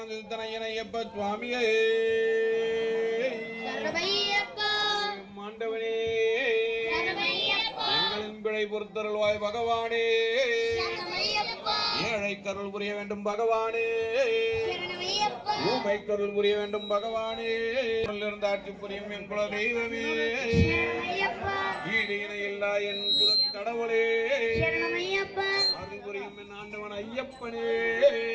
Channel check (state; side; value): identical; both; correlation 1.00